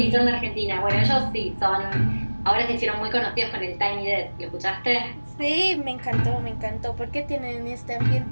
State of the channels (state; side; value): inverted; both; correlation -1.00